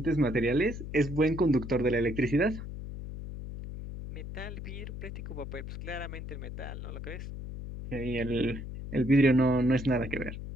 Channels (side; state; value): left; noise; hum, 9 dB below the sound